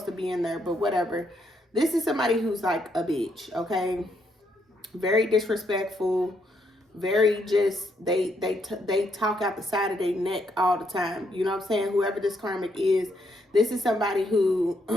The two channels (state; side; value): normal; both; correlation 0.75